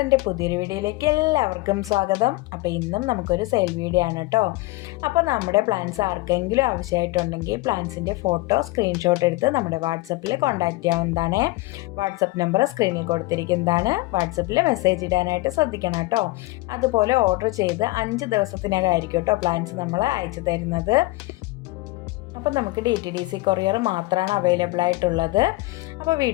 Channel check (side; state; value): right; quieter; 21.1 dB